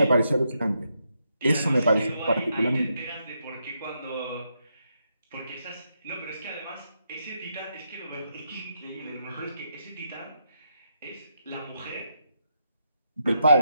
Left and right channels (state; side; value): inverted; both; correlation -0.81